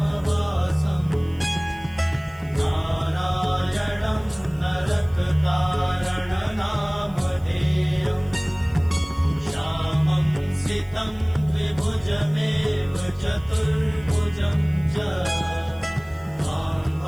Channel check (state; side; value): noise; right; hiss, 28 dB below the sound